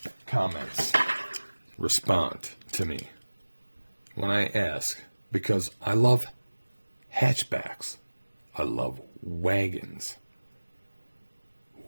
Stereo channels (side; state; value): both; inverted; correlation -1.00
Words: comments respond to me when I ask, because I love hatchbacks. I love wagons.